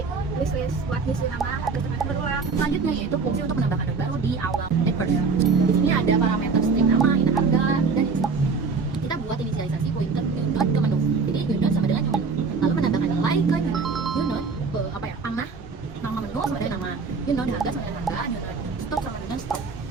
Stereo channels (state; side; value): quieter; left; 4.8 dB